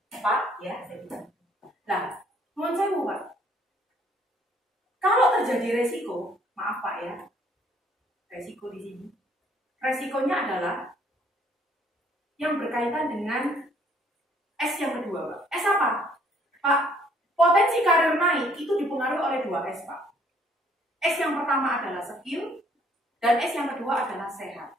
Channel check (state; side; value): normal; both; correlation 0.62